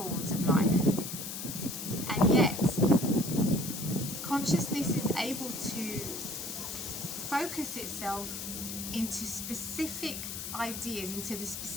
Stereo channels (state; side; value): noise; left; hiss, 6 dB below the sound